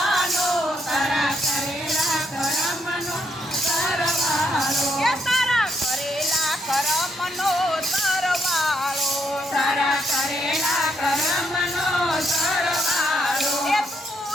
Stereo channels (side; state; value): both; normal; correlation 0.75